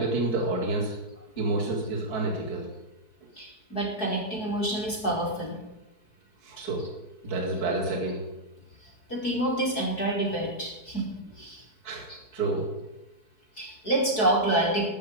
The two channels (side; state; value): right; late; 4.6 ms